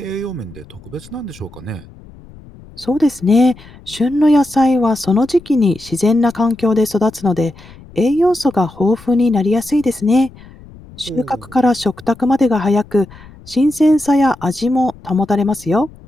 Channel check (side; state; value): left; noise; rumble, 21 dB below the sound